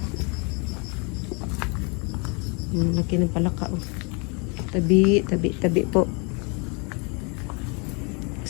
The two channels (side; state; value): right; quieter; 33.4 dB